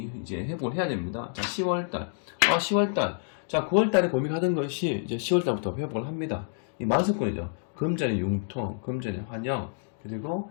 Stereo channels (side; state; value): right; silent; digital silence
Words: 이제 회복을 해야 됩니다. 자, 10월달. 10월달. 자, 9월달에 고민하던 것이 이제 10월달부터 회복을 합니다. 이 만석권이죠. 금전의 융통, 금전의 환영, 그리고